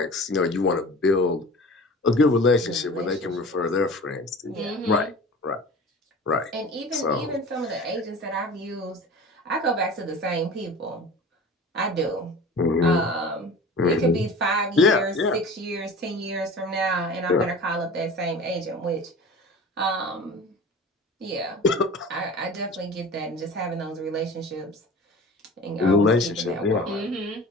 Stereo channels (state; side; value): normal; both; correlation 0.38